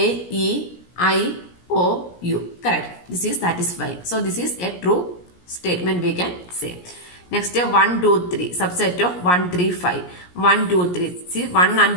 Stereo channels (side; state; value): right; late; 17 ms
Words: E, I, O, U. Correct. This is satisfying. So this is a true statement we can say. Next 1, 2, 3 subset of 1, 3, 5. 1, 2, 3. See 1